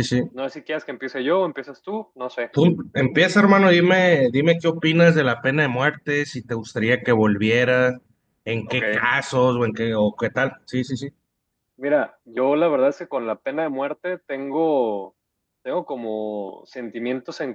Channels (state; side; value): identical; both; correlation 1.00